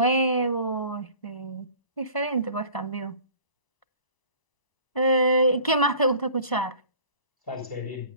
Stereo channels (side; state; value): right; late; 1.0 ms